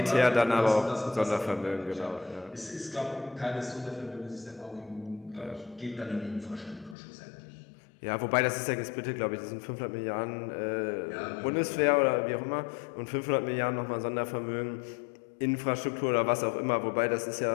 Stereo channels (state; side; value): drops out; right; at 7.0 s